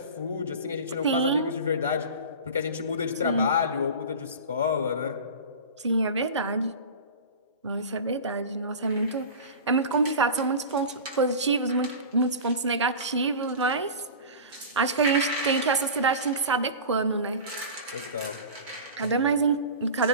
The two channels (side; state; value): both; inverted; correlation -0.32